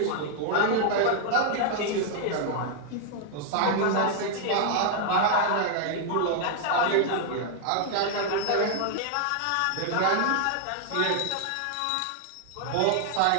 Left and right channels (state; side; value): different; both; correlation 0.00